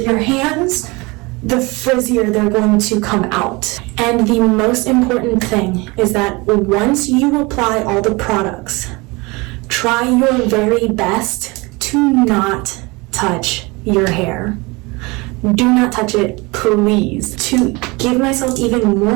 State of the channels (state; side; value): quieter; left; 25.3 dB